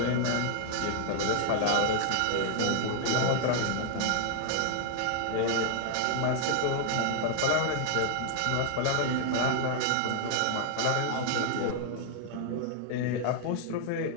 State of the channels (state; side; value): different; both; correlation 0.00